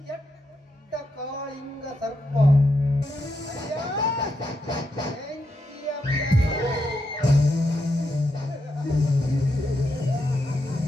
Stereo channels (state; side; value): normal; both; correlation 0.83